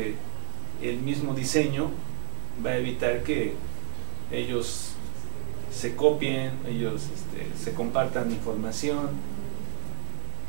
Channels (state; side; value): silent; left; 56 dB below the other